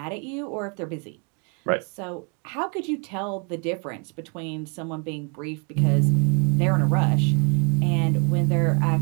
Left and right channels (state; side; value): quieter; left; 36.7 dB